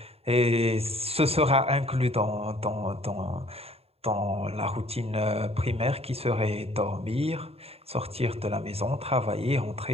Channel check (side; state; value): left; late; 0.29 ms